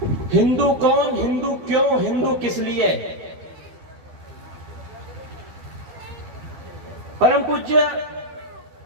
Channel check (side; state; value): left; late; 12 ms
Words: हिंदू कौन, हिंदू क्यों, हिंदू किस लिए। परम पूज्य